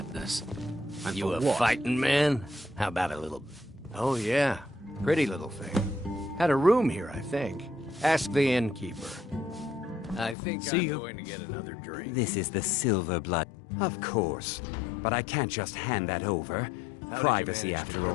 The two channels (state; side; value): drops out; right; at 10.4 s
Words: And You for a what? fighting man? How about a little... Oh, yeah. Pretty little thing. Had a room here, I think. Ask the innkeeper. I think I'm going to get another drink. This is the Silver Blood. Of course. But I can't just hand that over. Privacy, after